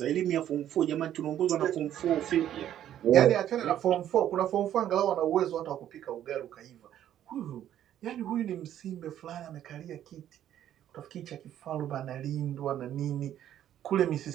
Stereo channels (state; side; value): quieter; left; 11.2 dB